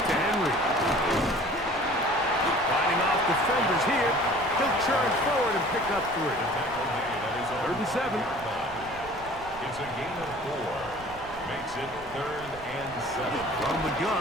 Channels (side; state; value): right; noise; rumble, 19 dB below the sound